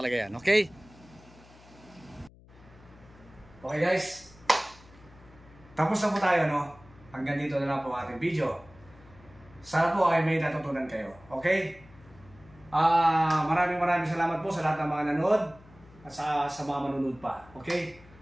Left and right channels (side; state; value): left; noise; hum, 24 dB below the sound